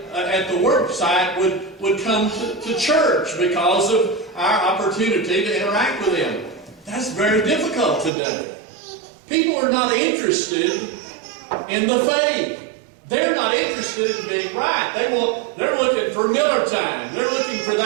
at the work site would come to church because of our opportunity to interact with them. That's very difficult today. People are not interested in the faith. They're not interested in being right. They're looking for Miller time. They're looking for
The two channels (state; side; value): drops out; left; at 8.1 s